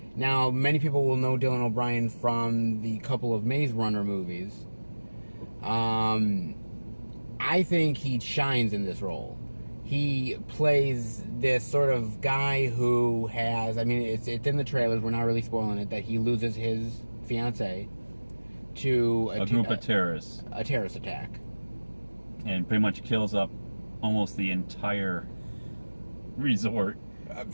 Now, many people will know Dylan O'Brien from the couple of Maze Runner movies. I think he shines in this role. He plays this sort of guy who has, I mean, it's in the trailers, we're not really spoiling it, that he loses his fiancée to a group of terrorists. A terrorist attack. And pretty much kills up almost the entire resort.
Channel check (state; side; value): inverted; both; correlation -1.00